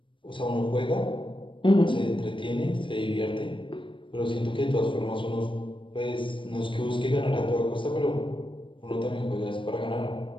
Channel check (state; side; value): late; right; 0.24 ms